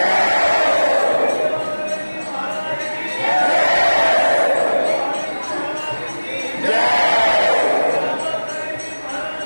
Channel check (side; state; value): both; inverted; correlation -1.00